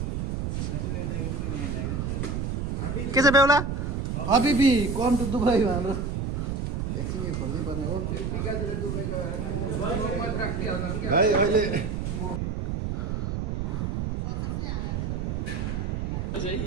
छ बेहुला हबिबी कम टु दुबई हाम्रो एकछिन यो खोल्नै पर्ने हो भाइ अहिले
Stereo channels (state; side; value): noise; right; rumble, 1 dB below the sound